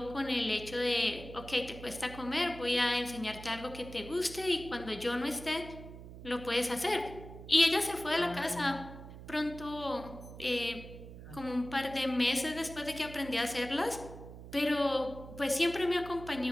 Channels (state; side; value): noise; right; hum, 14 dB below the sound